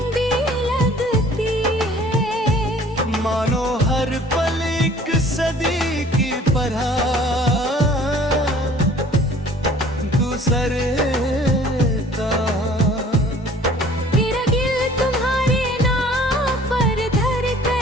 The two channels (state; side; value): normal; both; correlation 0.52